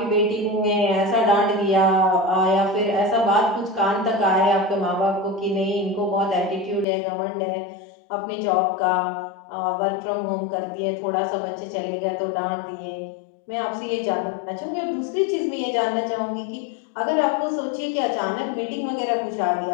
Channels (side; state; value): right; drops out; at 6.9 s